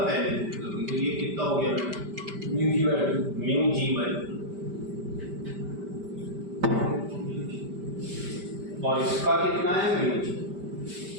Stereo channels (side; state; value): left; late; 5.1 ms